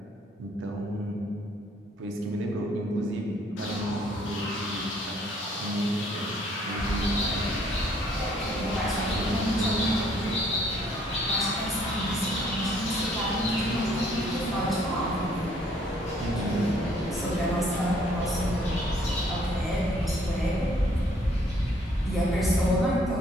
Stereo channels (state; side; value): normal; both; correlation 0.63